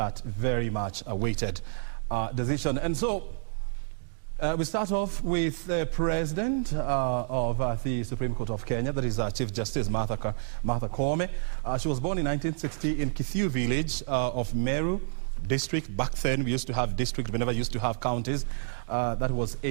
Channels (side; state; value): left; silent; digital silence